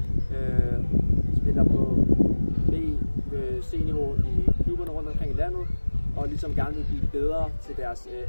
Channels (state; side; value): inverted; both; correlation -1.00